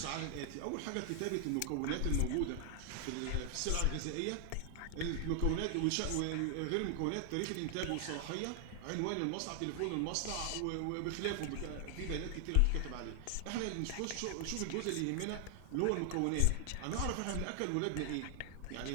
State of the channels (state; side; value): different; both; correlation 0.00